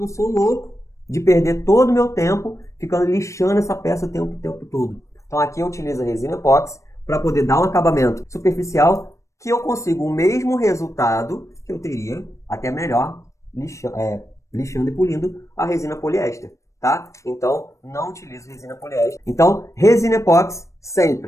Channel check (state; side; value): late; right; 0.15 ms